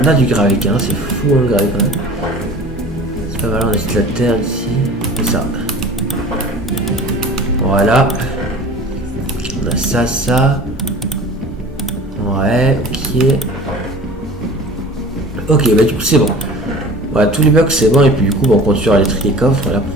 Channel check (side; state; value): both; normal; correlation 0.42